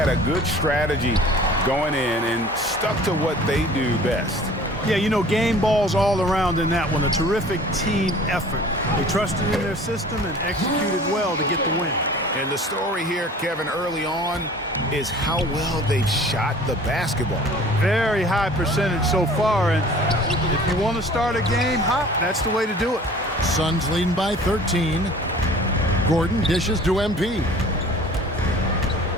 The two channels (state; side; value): normal; both; correlation 0.47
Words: a good strategy going in and stuck to what they do best. Yeah, you know, game balls all around in that one. A terrific team effort. They trusted in their system and executed well to get the win. And the story here, Kevin, early on is how well they've shot the basketball. Very high percentage so far, and if you want to start a game hot, that's the way to do it. Suns leading by 13. Gordon dishes to MP.